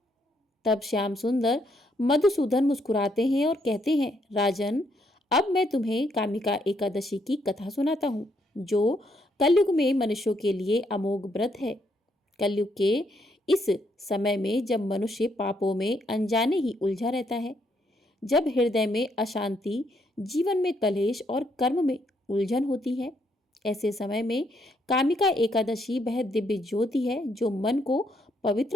तब श्याम सुंदर मधुसूदन मुस्कुराते हैं और कहते हैं, राजन, अब मैं तुम्हें कामिका एकादशी की कथा सुनाता हूँ, जो कलयुग में मनुष्यों के लिए अमोघ व्रत है। कलयुग के इस समय में जब मनुष्य पापों में अनजाने ही उलझा रहता है, जब हृदय में अशांति, जीवन में कलेश और कर्म में उलझन होती है, ऐसे समय में कामिका एकादशी वह दिव्य ज्योति है जो मन को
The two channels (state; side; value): normal; both; correlation 0.73